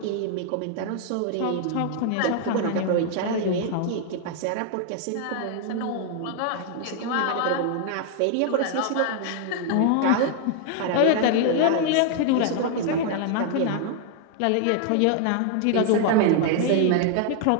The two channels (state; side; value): different; both; correlation 0.00